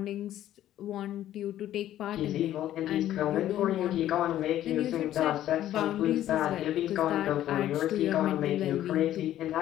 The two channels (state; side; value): quieter; right; 12.6 dB